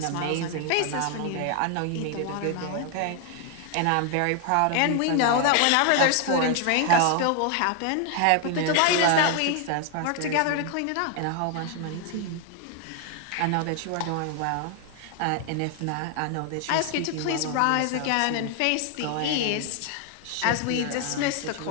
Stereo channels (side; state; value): both; different; correlation 0.00